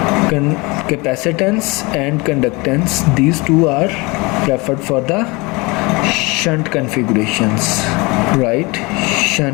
capacitance and conductance, these two are preferred for the shunt configurations, right?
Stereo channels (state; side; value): quieter; right; 25.6 dB